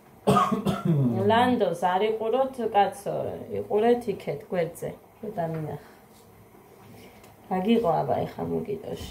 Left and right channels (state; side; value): identical; both; correlation 1.00